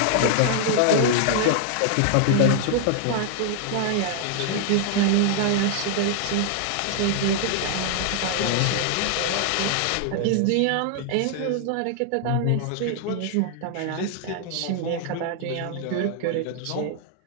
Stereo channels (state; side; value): different; both; correlation -0.01